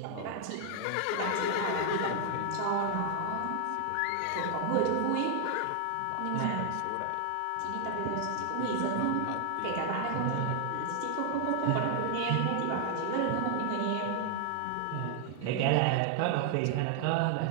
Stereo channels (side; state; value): both; different; correlation 0.00